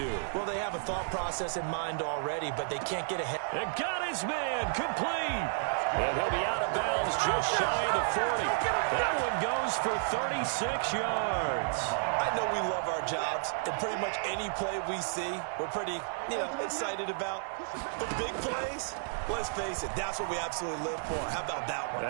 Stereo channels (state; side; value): silent; left; 56 dB below the other